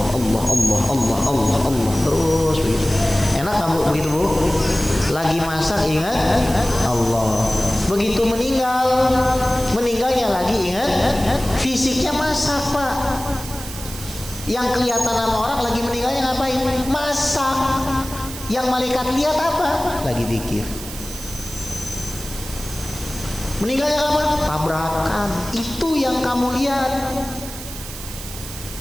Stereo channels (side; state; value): right; noise; hiss, 12 dB below the sound